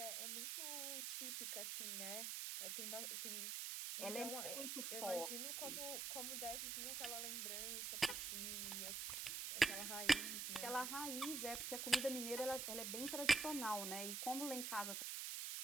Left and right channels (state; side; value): noise; right; hiss, 2 dB below the sound